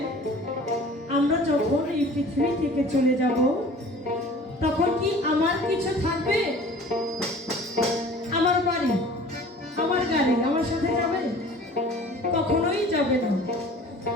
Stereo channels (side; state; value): both; normal; correlation 0.46